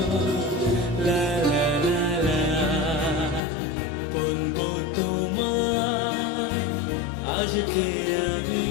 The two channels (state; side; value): drops out; right; at 3.4 s